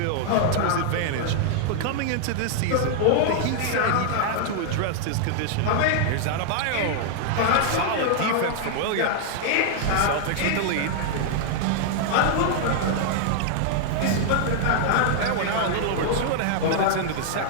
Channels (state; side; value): different; both; correlation -0.01